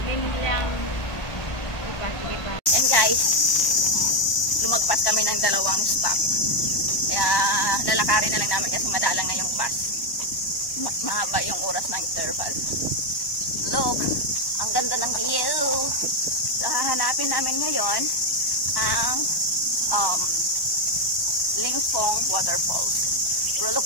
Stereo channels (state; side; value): late; right; 1.1 ms